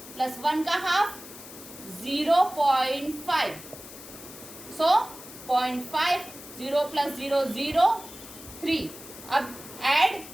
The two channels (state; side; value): noise; left; hiss, 16 dB below the sound